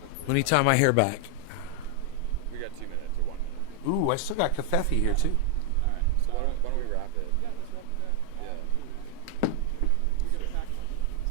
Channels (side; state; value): both; different; correlation 0.00